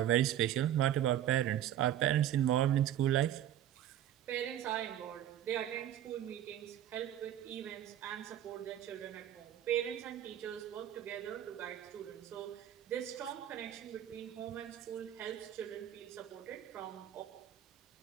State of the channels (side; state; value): left; quieter; 11.5 dB